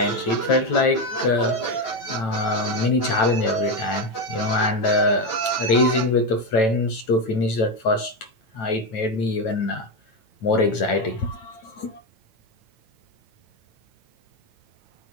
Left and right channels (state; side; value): late; right; 9.0 ms